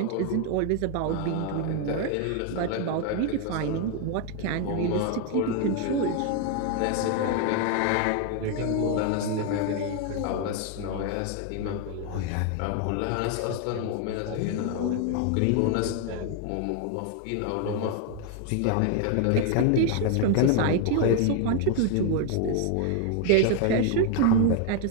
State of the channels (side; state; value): both; different; correlation 0.01